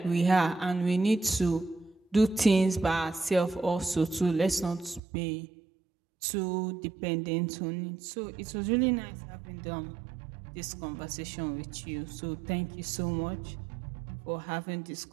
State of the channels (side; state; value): left; drops out; at 5.0 s